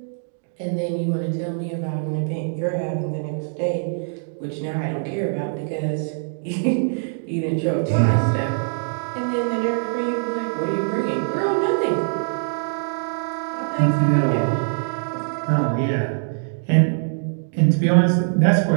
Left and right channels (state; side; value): silent; left; digital silence